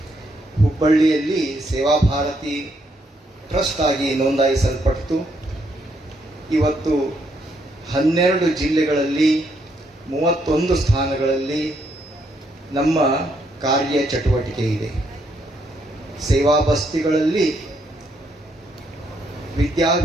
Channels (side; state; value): both; normal; correlation 0.75